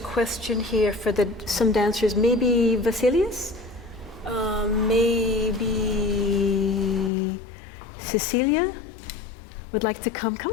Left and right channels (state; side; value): drops out; right; at 7.1 s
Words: question here for some dancers. Maybe Vasilius? Maybe Cecilia would like to come.